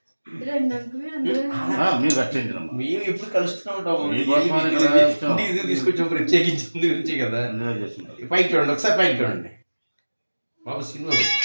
మీరు కట్టించడం మేము ఎప్పుడు కలుస్తూనే ఉంటాము. మీకోసం ఇది తీసుకొచ్చిన ప్రత్యేకించింది గురించి కదా. పైకి చూడండి, ఒకసారి పైకి చూడండి బాబు సినిమా.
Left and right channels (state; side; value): inverted; both; correlation -1.00